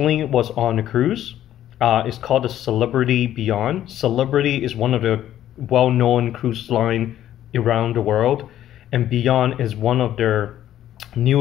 was on a cruise. It's called the Celebrity Beyond. Celebrity is one of the well-known cruise line around the world, and Beyond is one of their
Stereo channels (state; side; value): quieter; right; 12.0 dB